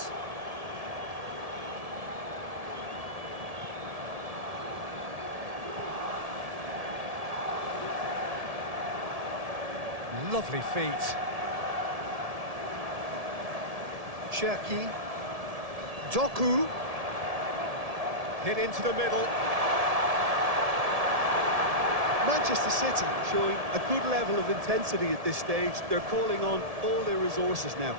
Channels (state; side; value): late; left; 1.7 ms